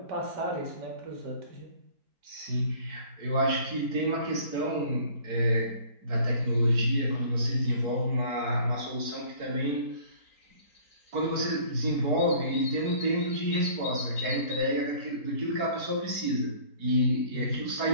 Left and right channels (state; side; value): late; left; 4.6 ms